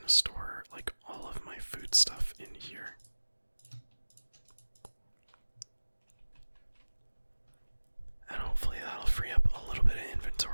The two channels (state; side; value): inverted; both; correlation -1.00